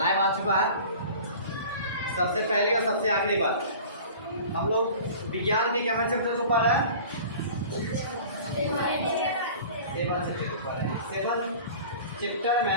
आ चुका है। सबसे पहली और सबसे आखिरी बात, हम लोग विज्ञान के क्या चैप्टर के ऊपर है? सेवन चैप्टर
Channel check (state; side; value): inverted; both; correlation -0.41